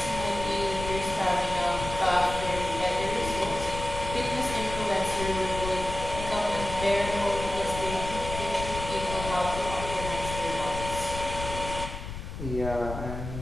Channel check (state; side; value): noise; left; rumble, 8 dB below the sound